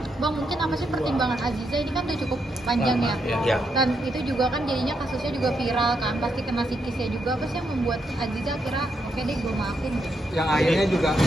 Bang, mungkin apa sih pertimbangan Aziza ini kan udah cukup panjang ya? Ya. Dan itu juga kan jadinya kasusnya juga viral kan, pasti kena psikisnya juga. Apa sih yang membuat Aziza kira oke deh gue maafin? Yang akhirnya juga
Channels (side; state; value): both; normal; correlation 0.80